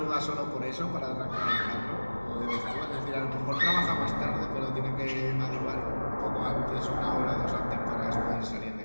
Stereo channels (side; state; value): both; inverted; correlation -1.00